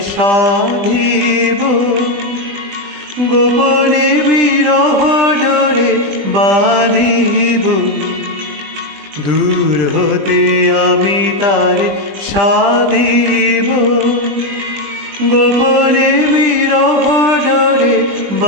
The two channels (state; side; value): late; left; 20 ms